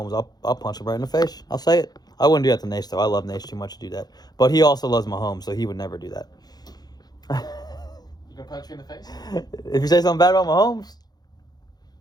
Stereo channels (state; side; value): late; right; 0.19 ms